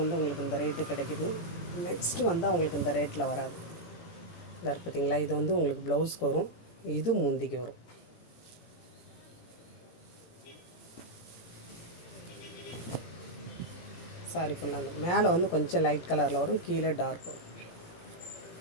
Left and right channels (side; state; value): right; late; 17 ms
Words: உங்களுக்கு இந்த ரேட்டு கிடைக்குது. நெக்ஸ்ட்டு வந்து அவங்களுக்கு இந்த ரேட்டில் வராது. இந்த பார்த்தீங்களா, இது வந்து உங்களுக்கு ப்ளவுஸ்க்கு வரும், இது முந்திக்கு வரும். சாரி ஃபுல்லாக மேலே வந்து கொஞ்சம் லைட் கலரில் வரும், கீழே டார்க் வரும்.